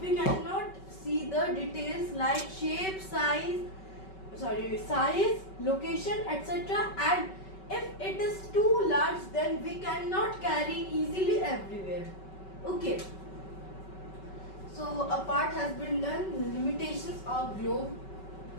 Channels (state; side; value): late; right; 5.3 ms